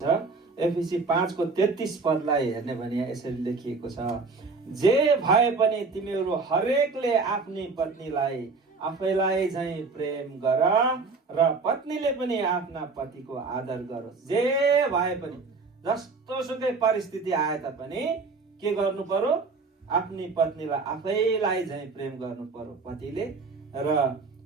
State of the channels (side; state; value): left; quieter; 4.2 dB